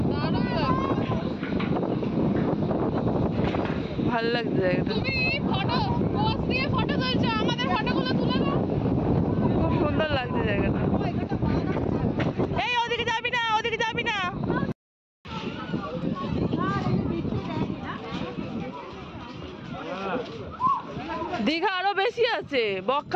ভাল লাগছে জায়গাটা, খুব সুন্দর লাগছে জায়গাটা। এই ওদিকে যাবি না, ওদিকে যাবি না। দীঘা আরো বেশি আছে,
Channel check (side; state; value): both; identical; correlation 1.00